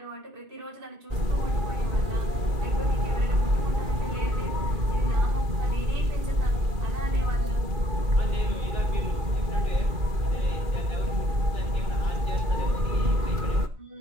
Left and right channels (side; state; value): left; late; 2.4 ms